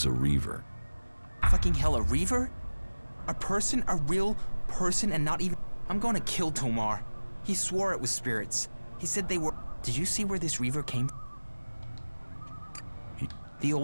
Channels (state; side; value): inverted; both; correlation -1.00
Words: a reaver. Fucking hell, a reaver? A person? A real person and not even... I'm gonna kill Tomar. He swore it was spirits. He said they were... Did you see where this reaver came from? The